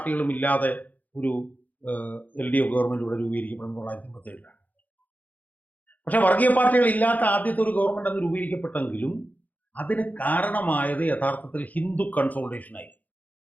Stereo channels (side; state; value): right; late; 0.080 ms